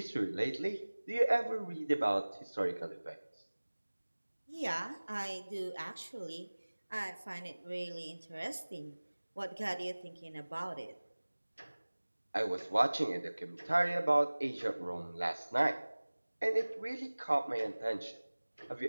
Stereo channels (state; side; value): inverted; both; correlation -1.00